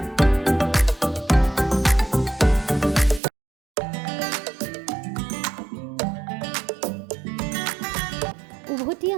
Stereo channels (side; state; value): left; drops out; at 3.2 s